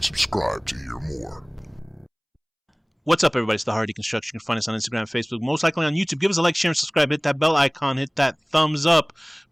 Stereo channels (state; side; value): identical; both; correlation 1.00